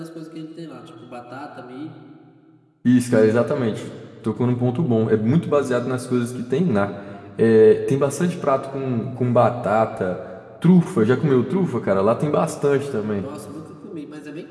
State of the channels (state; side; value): identical; both; correlation 1.00